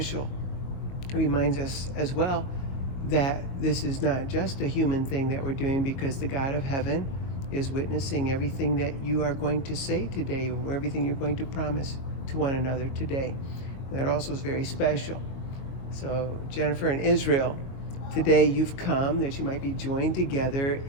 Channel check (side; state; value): right; late; 22 ms